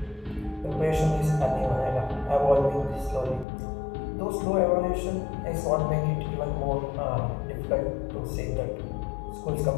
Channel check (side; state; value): right; drops out; at 3.5 s